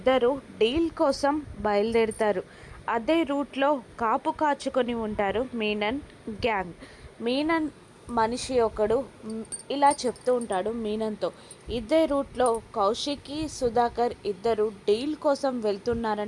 డీల్ కోసం బయలుదేరుతారు. అదే రూట్లో కాపు కాచుకొని ఉంటారు మీనన్ గ్యాంగ్. మీనన్ మనిషి ఒకడు ఇలా చెప్తూ ఉంటాడు మీనన్తో, ఇదే రూట్లో కౌశికి, సుధాకర్ ఇద్దరు డీల్ కోసం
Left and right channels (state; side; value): identical; both; correlation 1.00